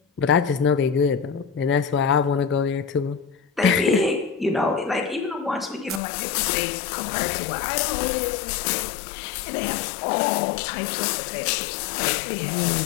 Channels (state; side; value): drops out; right; at 6.0 s